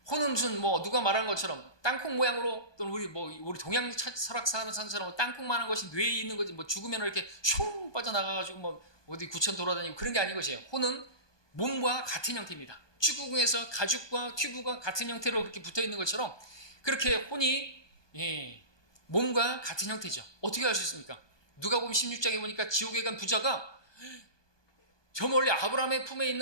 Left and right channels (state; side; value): late; right; 1.2 ms